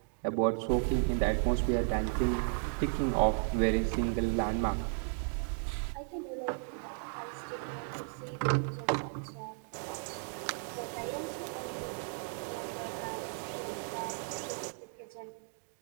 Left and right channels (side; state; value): left; silent; 55 dB below the other